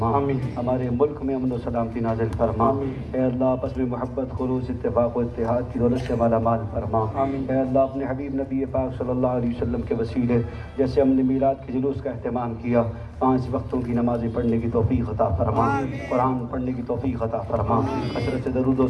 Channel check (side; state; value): both; identical; correlation 1.00